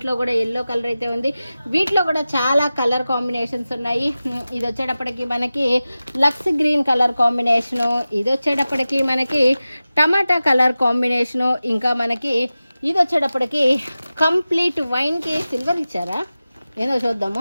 కూడా ఎల్లో కలర్ అయితే ఉంది. వీటిలో కూడా చాలా కలర్ కాంబినేషన్స్ ఉన్నాయి. ఇది వచ్చేటప్పటికి మనకి లక్స్ గ్రీన్ కలర్ కాంబినేషను, ఇది వచ్చేటప్పటికి మనకి టమాటా కలర్ కాంబినేషను, ఇంకా మనకి ఇది వచ్చేటప్పటికి కంప్లీట్ వైన్కి సిల్వర్ ఇచ్చారా ఏదో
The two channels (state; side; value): inverted; both; correlation -0.95